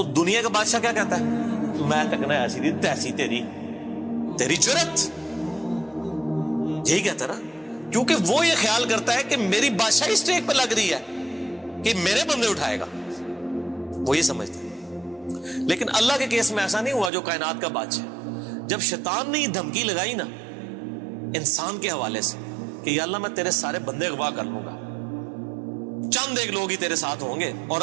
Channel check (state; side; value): drops out; left; at 17.1 s